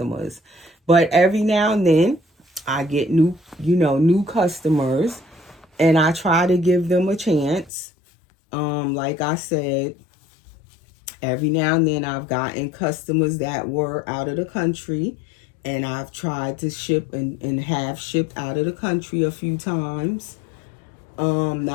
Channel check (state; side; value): drops out; right; at 7.7 s